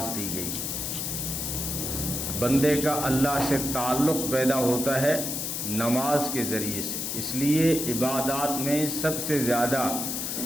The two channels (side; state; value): left; noise; hiss, 3 dB below the sound